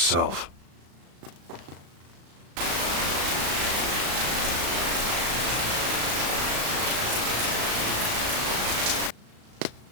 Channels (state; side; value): late; left; 35 ms